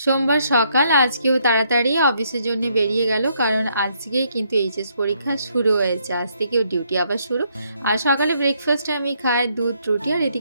সকাল আজকেও তাড়াতাড়ি অফিসের জন্য বেরিয়ে গেল, কারণ আজকেই কিন্তু এইচএস পরীক্ষা শুরু হয়েছে। আজ থেকেও ডিউটি আবার শুরু। আর সকালে ব্রেকফাস্টে আমি খাই দুধ রুটি, আর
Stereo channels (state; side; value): inverted; both; correlation -0.72